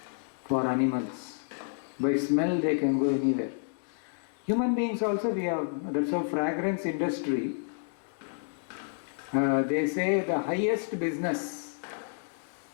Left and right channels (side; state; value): right; silent; digital silence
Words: for animals. By smell they can go anywhere. Human beings also we have, that's how fragrance industry, they say the highest business,